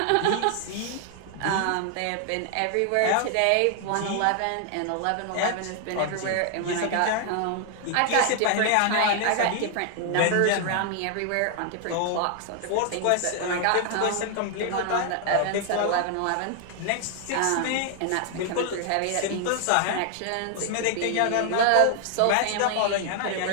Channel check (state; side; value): different; both; correlation 0.00